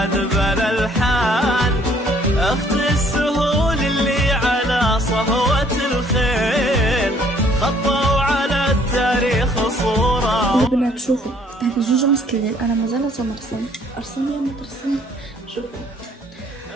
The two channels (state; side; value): normal; both; correlation 0.61